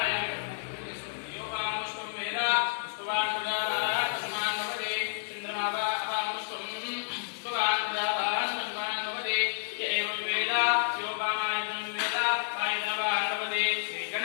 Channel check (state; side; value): silent; right; 58 dB below the other